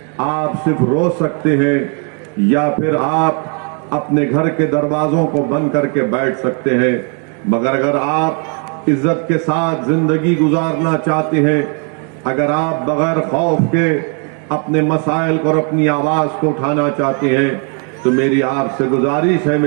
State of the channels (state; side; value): quieter; left; 37.7 dB